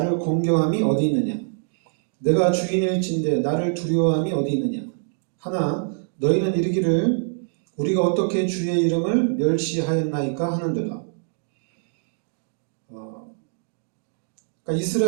어디 있느냐? 내가 주인일진데 나를 두려워함이 어디 있느냐? 하나 너희는 이르기를 우리가 어떻게 주의 이름을 멸시하였나이까 하는도다. 그러니까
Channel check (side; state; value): left; silent; digital silence